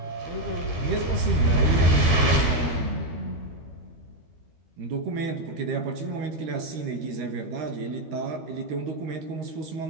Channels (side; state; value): left; late; 13 ms